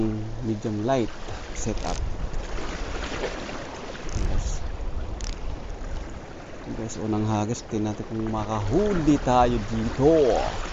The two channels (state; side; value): identical; both; correlation 1.00